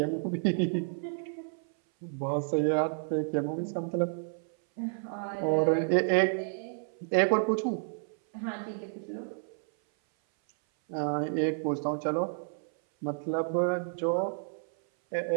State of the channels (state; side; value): silent; left; 57 dB below the other